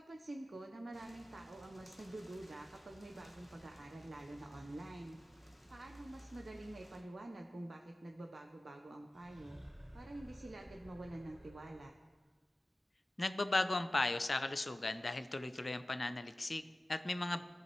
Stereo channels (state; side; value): normal; both; correlation 0.96